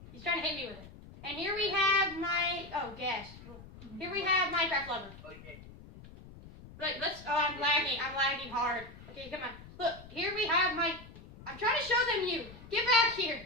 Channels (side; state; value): left; noise; rumble, 18 dB below the sound